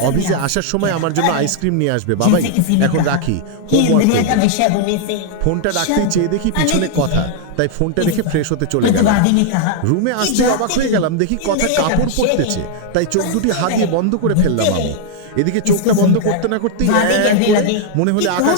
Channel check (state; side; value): different; both; correlation 0.00